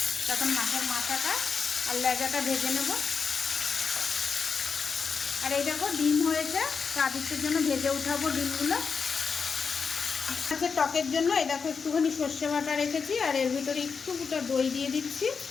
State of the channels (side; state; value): right; quieter; 5.6 dB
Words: তখন মাছের মাথাটা আর লেজাটা ভেজে নেব। আর এই দেখো ডিম হয়েছে, তো আদিত্যের জন্য ভেজে উঠাবো ডিমগুলো। মাছের টকের জন্য এই দেখো একটুখানি সর্ষে বাটা রেখেছি, আর এর ভিতরে একটুটা দই দিয়ে দিচ্ছি।